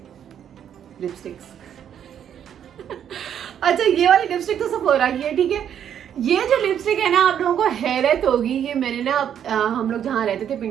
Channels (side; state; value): left; quieter; 9.3 dB